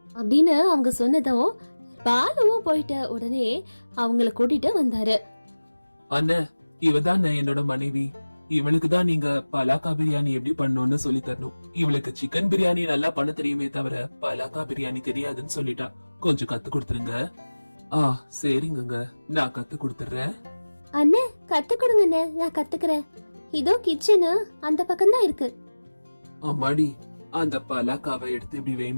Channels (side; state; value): both; inverted; correlation -1.00